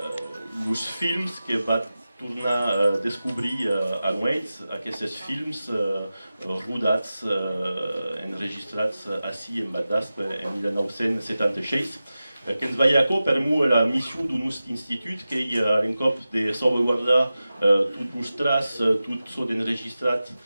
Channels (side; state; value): both; inverted; correlation -0.94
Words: films que va tornar a descobrir a nois, aquests films rodats, enregistrats ací en Badasp en 1976, que ens veia per mu la missió d'un nostre institut que hi ha l'encop de salvaguardar tot mostras, tot so d'enregistrat